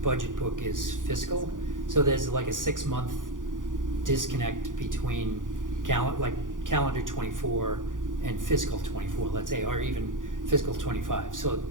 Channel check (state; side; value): late; left; 0.88 ms